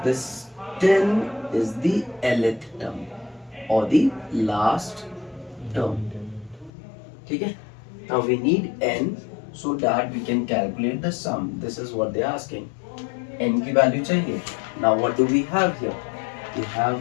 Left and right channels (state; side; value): drops out; right; at 6.7 s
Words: this 10 is the nth term or the last term. ठीक है, now we need n so that we can calculate the sum. This is what they are asking. n की वैल्यू चाहिए. Now what do we have here? We have